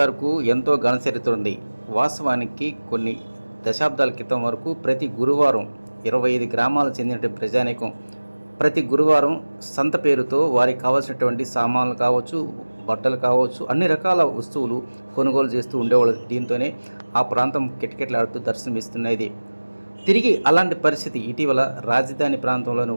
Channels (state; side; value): inverted; both; correlation -1.00